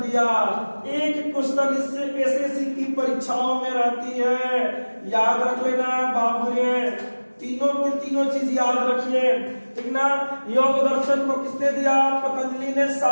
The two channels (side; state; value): both; inverted; correlation -1.00